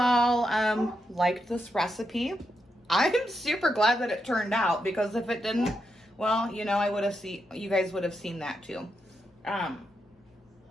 liked this recipe. I'm super glad that it turned out because if it didn't, well, you know, you guys would have seen that too.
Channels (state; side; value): normal; both; correlation 0.84